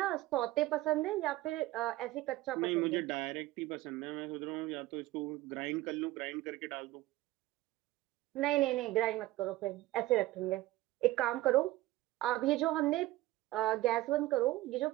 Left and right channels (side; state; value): left; quieter; 17.2 dB